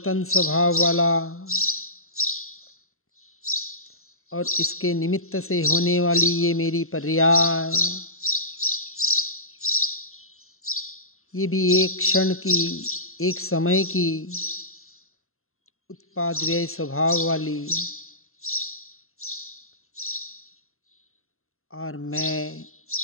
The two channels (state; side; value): late; right; 0.62 ms